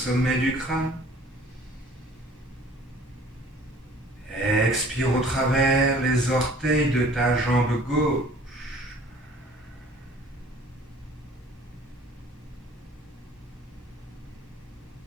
du crâne. Expire au travers les orteils de ta jambe gauche.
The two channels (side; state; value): both; normal; correlation 0.51